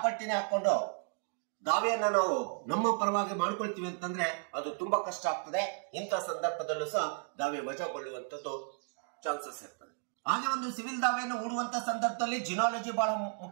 ಹಾಕೊಂಡು ದಾವೆಯನ್ನ ನಾವು ನಮ್ಮ ಪರವಾಗಿ ಮಾಡ್ಕೊಳ್ತೀವಿ ಅಂತಂದ್ರೆ ಅದು ತುಂಬಾ ಕಷ್ಟ ಆಗ್ತದೆ. ಇಂಥ ಸಂದರ್ಭದಲ್ಲೂ ಸಹ ದಾವೆ ವಜಾಗೊಳ್ಳುವಂತದ್ದು ಚಾನ್ಸಸ್ ಇರ್ತದೆ. ಹಾಗೆ ಒಂದು ಸಿವಿಲ್ ದಾವೆಯನ್ನು ಹೂಡುವಂತ ಸಂದರ್ಭದಲ್ಲಿ ಜಿನಾಲಜಿ ಬಹಳ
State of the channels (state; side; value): silent; left; 55 dB below the other